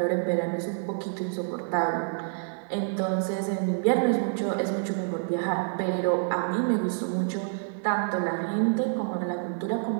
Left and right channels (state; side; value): silent; left; digital silence